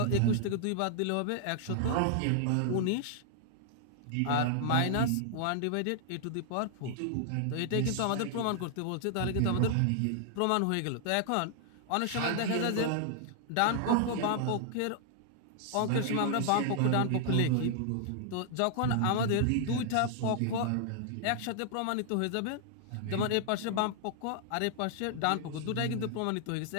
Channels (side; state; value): both; different; correlation 0.00